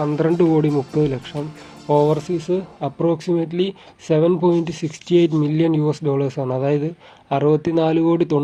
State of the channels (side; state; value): both; identical; correlation 1.00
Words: കോടി 30 ലക്ഷം. ഓവർസീസ് അപ്രോക്സിമേറ്റ്ലി 7.68 മില്യൺ ആണ്, അതായത് 64 കോടി